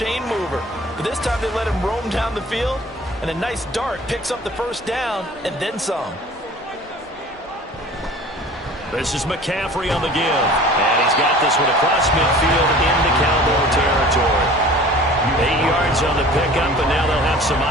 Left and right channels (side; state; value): both; normal; correlation 0.45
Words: mover. But this time they let him roam down the field, and a nice dart picks up the 1st down and then some. This is McCaffrey on the give. And he's got this one across midfield into Cowboy territory. 8 yards on the pickup, and now they'll have some